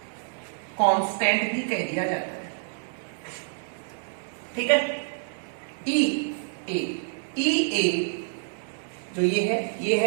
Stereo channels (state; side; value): silent; left; 60 dB below the other